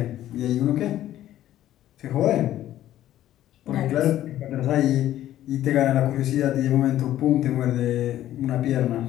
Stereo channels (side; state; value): right; quieter; 12.9 dB